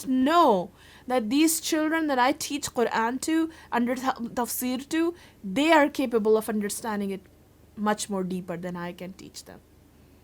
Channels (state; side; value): identical; both; correlation 1.00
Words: know that these children that I teach Quran to, under Tafsir to, they are capable of understanding it much more deeper than I can teach them.